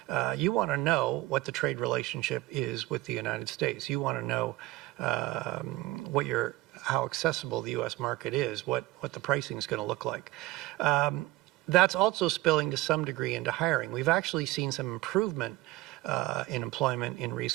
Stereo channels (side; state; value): left; quieter; 18.4 dB